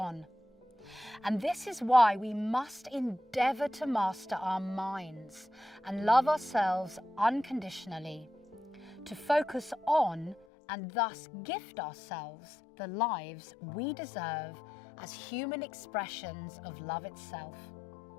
And this is why we must endeavour to master our minds and love ourselves unconditionally, to focus on and thus gift ourselves the lives we deserve as human expressions of love itself.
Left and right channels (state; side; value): drops out; right; at 10.5 s